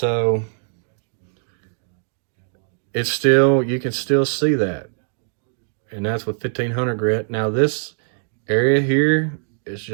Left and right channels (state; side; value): silent; left; 57 dB below the other